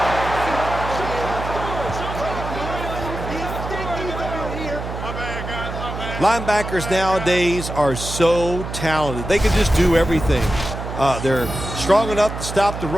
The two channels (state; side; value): noise; right; hum, 7 dB below the sound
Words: Linebackers nowadays are so talented. They can just do everything. They're strong enough to stop the